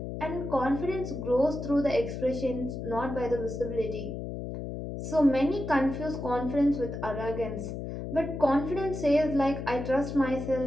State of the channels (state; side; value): noise; left; hum, 6 dB below the sound